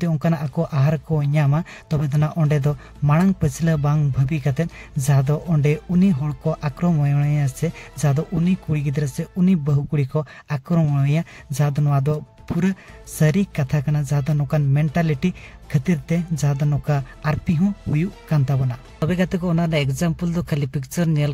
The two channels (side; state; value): both; identical; correlation 1.00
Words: उनकाना आको आहार को न्यामा तबे तना ओंडे दो मांग पछला बांग भाबी कते जहां दो ओंडे उनी होड़ को आक्रमणया से जहां दो उनी कुड़ी गिद्र से उनी बहु कुड़ी को आक्रमणया जहां दो नवा दो पूरा सारी कथा कना जहां दो नोकान मेंटालिटी खातिर ते जहां दो नोका आरपी हो हुयु कान ताबोना तबे गाते को ओना एग्जांपल दो खाली पिक्चर नेल